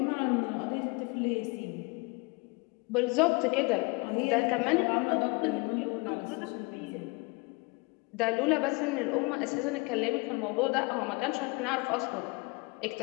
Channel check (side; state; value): right; quieter; 28.0 dB